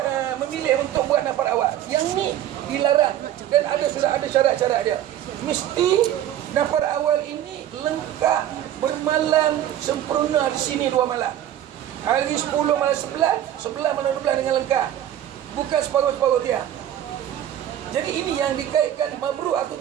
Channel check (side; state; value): left; quieter; 11.6 dB